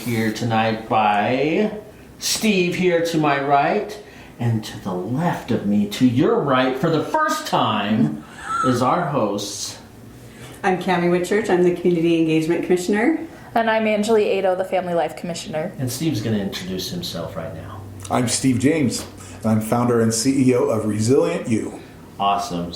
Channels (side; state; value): both; identical; correlation 1.00